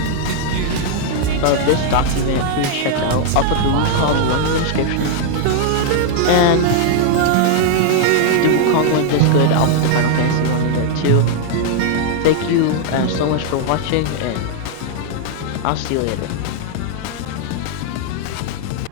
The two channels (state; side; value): different; both; correlation -0.01